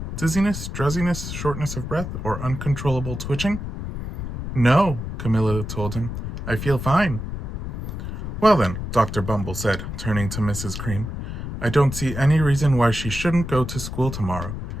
dizziness, drowsiness, shortness of breath, or uncontrollable twitching?" "No," Camilla told him. "I feel fine." "Well then," Dr. Bumble said, turning to Mrs. Cream, "I don't see any reason why she shouldn't go to school tomorrow.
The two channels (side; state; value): left; noise; rumble, 6 dB below the sound